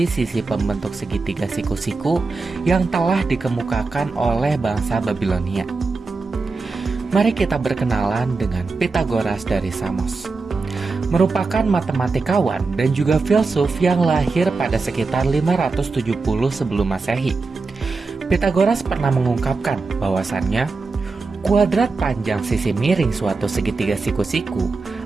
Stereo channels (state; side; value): quieter; left; 4.1 dB